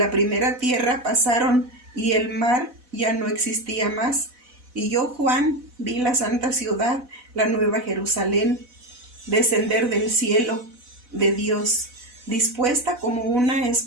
primera tierra pasaron, y el mar ya no existía más. Y yo, Juan, vi la santa ciudad, la nueva Jerusalén, descender del cielo de Dios, dispuesta como una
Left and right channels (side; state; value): left; late; 4.0 ms